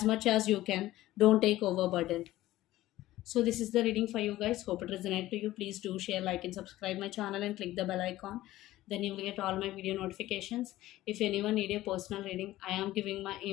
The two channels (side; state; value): right; quieter; 15.8 dB